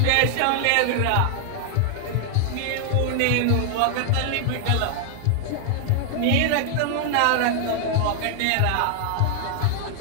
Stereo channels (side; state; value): both; different; correlation 0.00